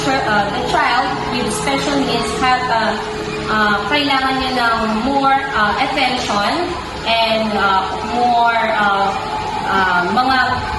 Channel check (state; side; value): identical; both; correlation 1.00